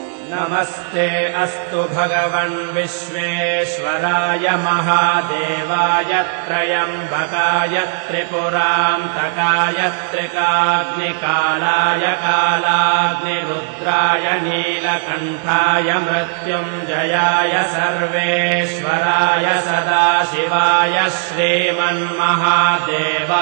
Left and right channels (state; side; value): silent; left; digital silence